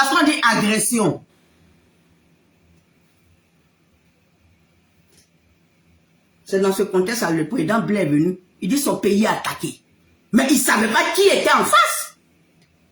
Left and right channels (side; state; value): both; identical; correlation 1.00